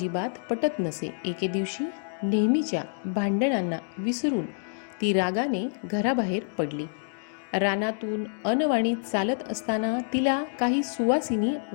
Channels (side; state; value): right; silent; digital silence